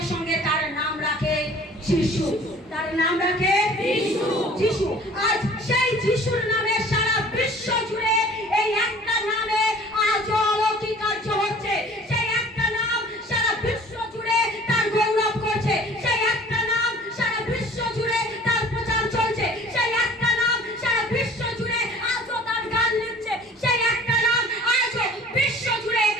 সঙ্গে তার নাম রাখে যিশু। তার নাম রাখে যিশু, যিশু। আজ সেই যিশুর নামে সারা বিশ্ব জুড়ে এই একটা নামে আজ অলৌকিক কার্য হচ্ছে। সেই একটা নাম সারা বিশ্ব জুড়ে তার গৌরব করছে। সেই একটা নাম সারা বিশ্ব জুড়ে তার প্রচার চলছে। সেই একটা নাম সারা বিশ্ব জুড়ে আজও তার গান লিখছে। সেই একটা নাম আজও বিশ্ব জুড়ে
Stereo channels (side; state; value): both; normal; correlation 0.48